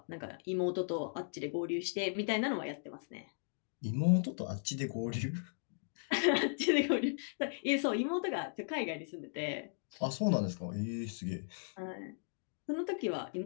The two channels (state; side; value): silent; right; digital silence